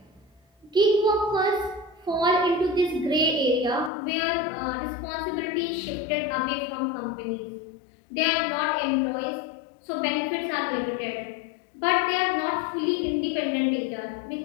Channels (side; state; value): right; drops out; at 3.9 s